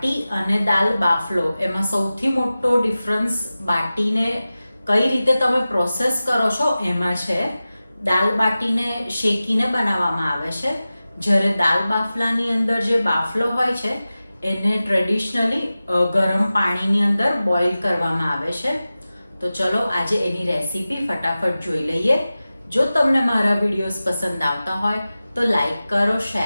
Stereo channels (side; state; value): both; inverted; correlation -0.95